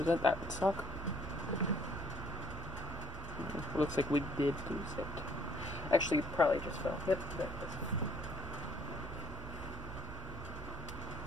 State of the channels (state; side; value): normal; both; correlation 0.64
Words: it, that would suck. Looks like we did lose it. Actually, probably just fell. Yep, there it is.